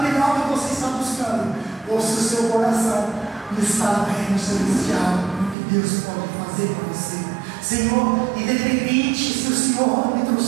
que você está buscando, ou se o seu coração está no reino celestial, no que Deus pode fazer para você. Senhor, independente se o Senhor me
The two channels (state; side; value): drops out; left; at 5.6 s